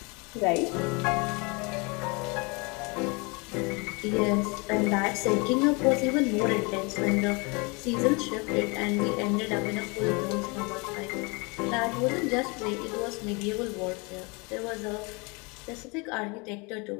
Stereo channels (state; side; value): quieter; right; 29.4 dB